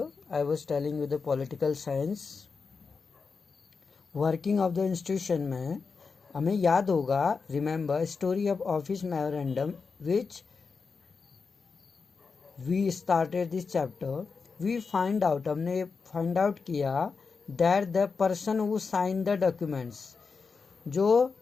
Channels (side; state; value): right; quieter; 5.0 dB